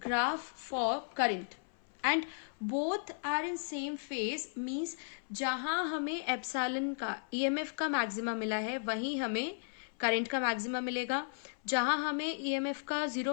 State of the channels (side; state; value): right; silent; 54 dB below the other